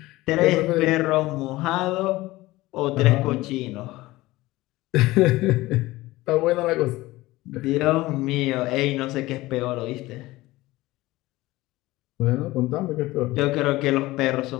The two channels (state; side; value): quieter; right; 18.8 dB